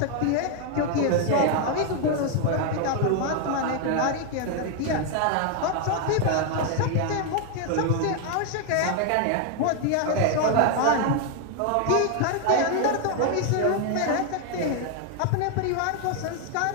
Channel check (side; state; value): both; different; correlation 0.01